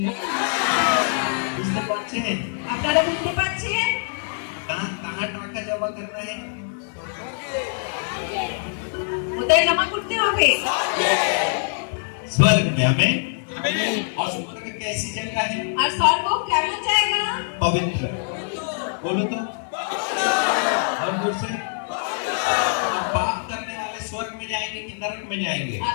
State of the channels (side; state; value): right; silent; digital silence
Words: बुझते पारছেন? আপনারা বুঝতে পারছেন? कहाँ कहाँ टाका जमा करना है? কোথায় জমা করতে হবে? स्वर्ग में। आमीन। और स्वर्ग कैसी जगह है? আর স্বর্গ কেমন জায়গা? पवित्र। बोलो तो और जोर से। अब पाप करने वाले स्वर्ग में जाएंगे कि नरक में जाएंगे? আর